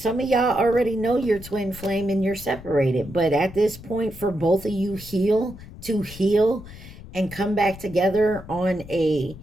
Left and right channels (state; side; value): noise; left; rumble, 16 dB below the sound